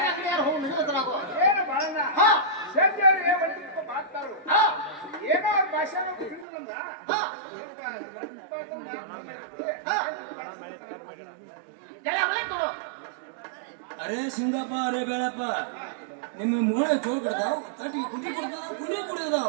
ಅಂಗಡಿ ಯಾರು ಹೋಗಿ ನಿಲ್ಲುತ್ತಾಗೋ ಏನೋ ಭಾಷೆ ಅರೇ ಸಿಂಗಪ್ಪ ಅರೇ ಬೇಳಪ್ಪ ನಿಮ್ಮ ಮೂಳೆ ಚೋಳ್ ಕೊಡ್ತಾವ್ ತಟ್ಟಿಗೆ ಕುಂಡಿ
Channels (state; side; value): drops out; left; at 6.5 s